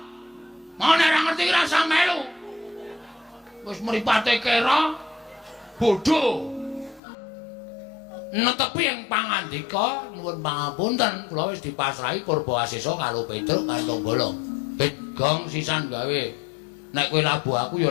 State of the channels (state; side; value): drops out; right; at 7.0 s